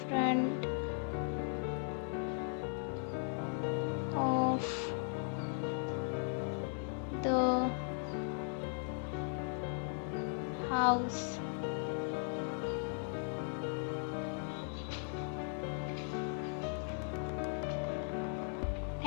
front of the house.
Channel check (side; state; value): right; silent; 53 dB below the other